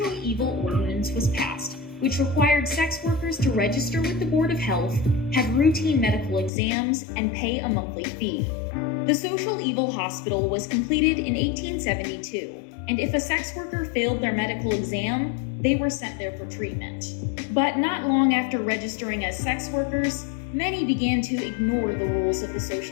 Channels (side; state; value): right; drops out; at 6.5 s